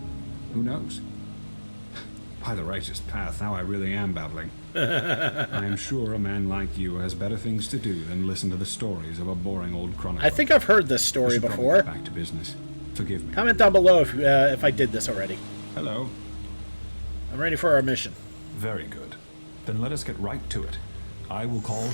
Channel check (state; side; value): inverted; both; correlation -1.00